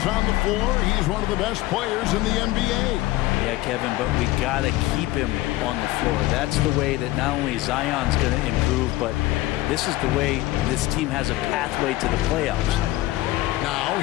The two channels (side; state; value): right; quieter; 17.6 dB